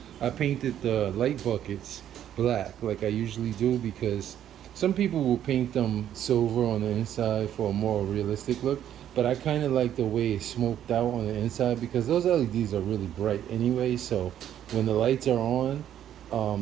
I painted the light buckets black like I usually do, because some people will paint them silver on the inside for a more realistic look, but I kind of like the way it's smoked out on the inside because those LEDs are really bright anyway. So when the lights are on,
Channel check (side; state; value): left; quieter; 10.6 dB